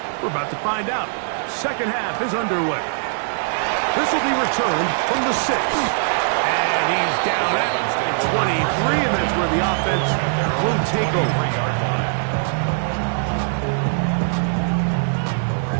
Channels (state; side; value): silent; left; digital silence